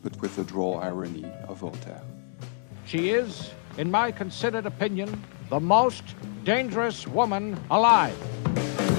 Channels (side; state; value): right; silent; 58 dB below the other